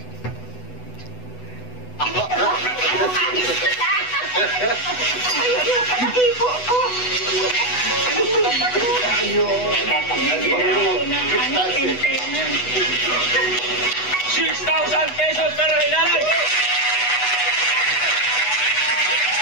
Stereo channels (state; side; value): late; right; 8.1 ms